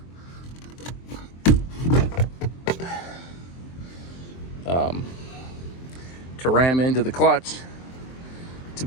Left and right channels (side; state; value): right; late; 23 ms